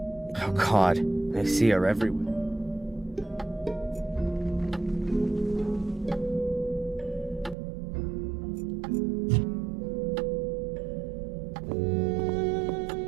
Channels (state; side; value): drops out; left; at 7.6 s